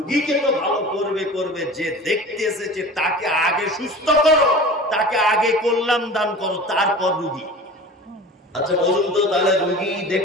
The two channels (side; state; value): both; normal; correlation 0.37